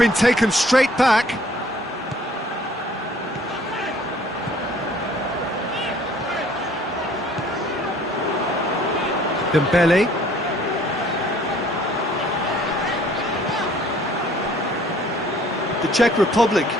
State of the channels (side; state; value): both; normal; correlation 0.56